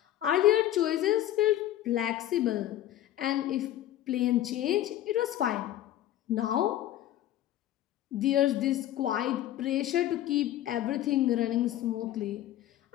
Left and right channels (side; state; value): right; quieter; 12.9 dB